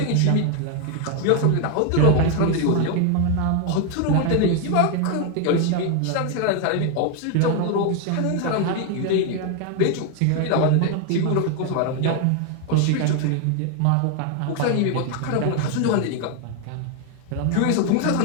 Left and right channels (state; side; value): different; both; correlation 0.01